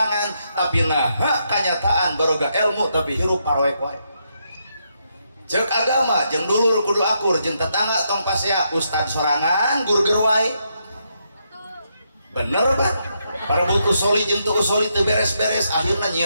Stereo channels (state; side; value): inverted; both; correlation -0.79